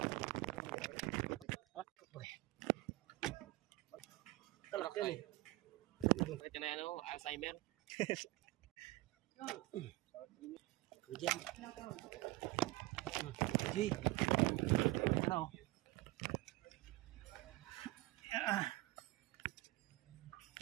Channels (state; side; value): quieter; left; 19.4 dB